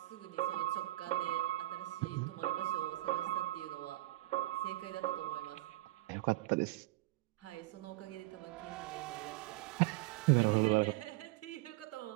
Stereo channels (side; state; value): left; quieter; 18.9 dB